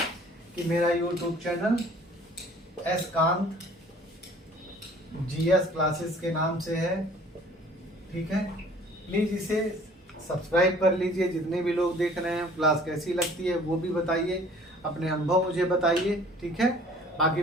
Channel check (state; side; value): normal; both; correlation 0.52